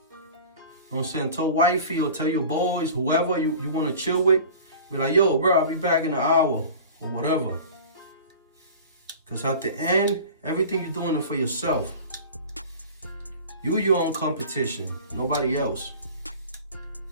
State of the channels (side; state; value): both; inverted; correlation -0.39